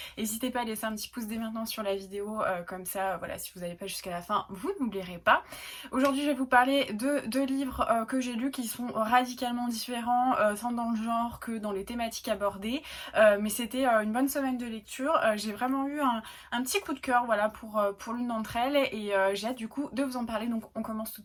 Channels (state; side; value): identical; both; correlation 1.00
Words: N'hésitez pas à laisser un petit pouce dès maintenant sur la vidéo, comme ça, voilà, si vous n'avez pas jusqu'à la fin, vous n'oublierez pas. Aujourd'hui, je vais vous parler de deux livres que j'ai lus qui sont radicalement différents, tant dans le genre que dans les thématiques abordées. Mais c'était une bonne semaine de lecture. J'ai vraiment eu un petit coup de cœur, voilà, pour l'une d'entre elles et j'ai hâte du coup de vous en parler. Donc, on commence tout